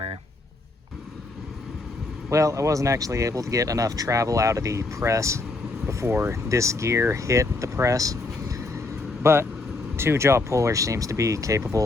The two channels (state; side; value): quieter; right; 3.2 dB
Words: Well, I wasn't actually able to get enough travel out of the press before this gear hit the press, but 2-jaw puller seems to be